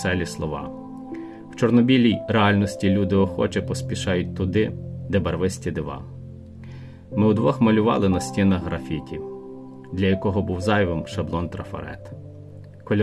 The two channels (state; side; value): identical; both; correlation 1.00